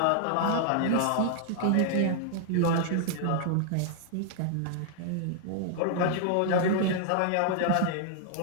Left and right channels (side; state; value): both; different; correlation 0.00